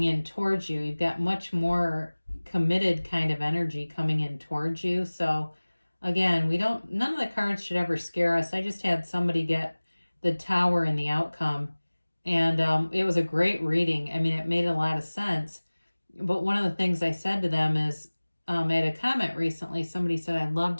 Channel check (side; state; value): both; inverted; correlation -1.00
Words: in towards you. You've got much more committed kind of energy coming in towards you. So again, none of the cards should ever scare us. I just had somebody get the Tower in the outcome, and it was a great reading. I mean, it made a lot of sense. But one of the things I said to them is, I had a comment recently. Somebody said, I'd love